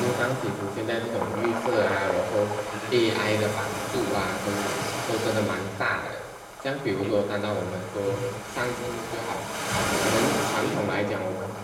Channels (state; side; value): identical; both; correlation 1.00